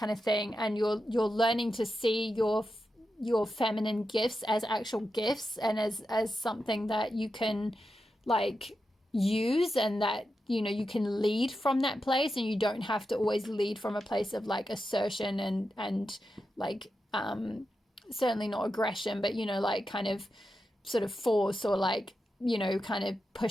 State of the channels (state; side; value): normal; both; correlation 0.89